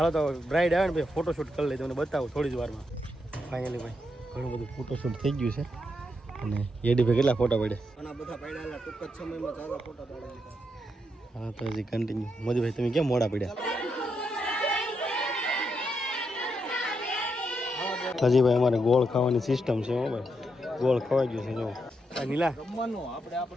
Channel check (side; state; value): both; normal; correlation 0.81